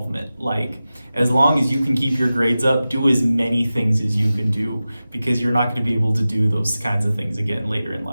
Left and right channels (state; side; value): inverted; both; correlation -0.95